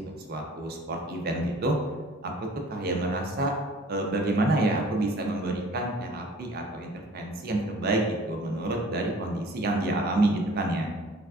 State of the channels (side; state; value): both; normal; correlation 0.50